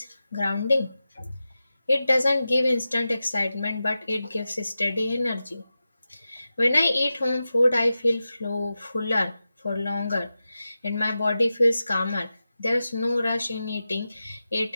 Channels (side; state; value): both; inverted; correlation -0.92